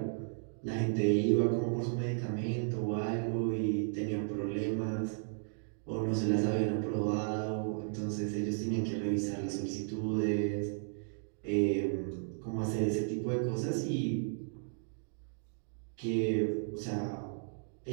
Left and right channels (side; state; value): left; silent; digital silence